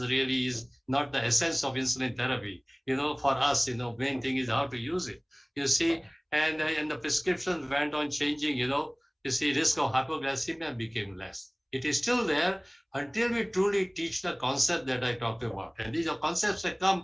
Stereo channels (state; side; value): identical; both; correlation 1.00